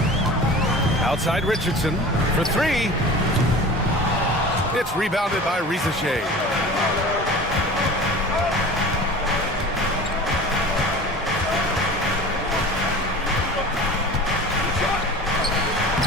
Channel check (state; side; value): normal; both; correlation 0.38